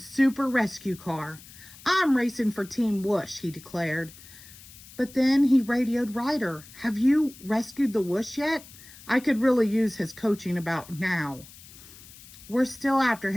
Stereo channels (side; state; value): left; noise; hiss, 20 dB below the sound